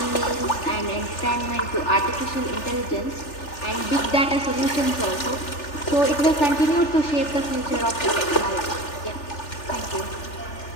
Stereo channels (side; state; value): right; late; 3.4 ms